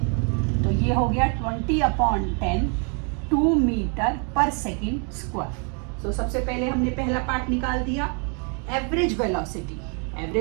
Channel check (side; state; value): left; quieter; 37.9 dB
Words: तो ये हो गया 20/10, 2 मीटर पर सेकंड स्क्वायर। तो सबसे पहले हमने पहला पार्ट निकाल दिया। एवरेज